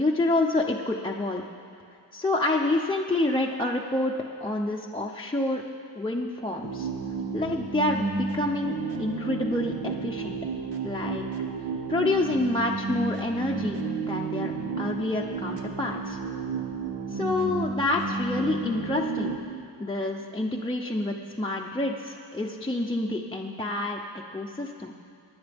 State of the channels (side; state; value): both; normal; correlation 0.50